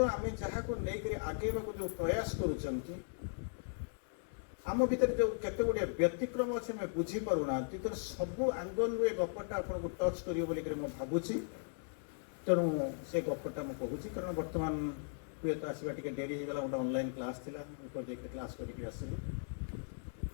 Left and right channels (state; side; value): silent; right; 53 dB below the other